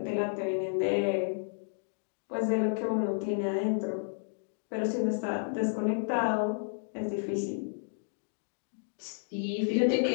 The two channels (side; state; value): right; silent; digital silence